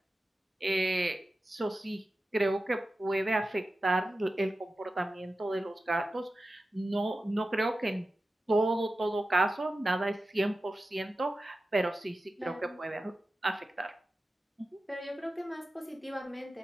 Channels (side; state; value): both; normal; correlation 0.94